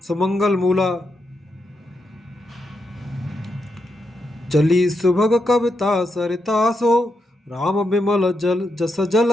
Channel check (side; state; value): both; normal; correlation 0.83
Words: सुमंगल मूला, चली सुभग कविता सरितासो, राम विमल जल जस